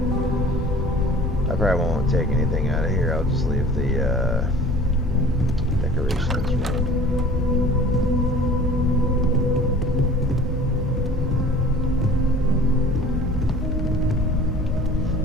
I probably won't take anything out of here, I'll just leave the decorations room.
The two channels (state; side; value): normal; both; correlation 0.45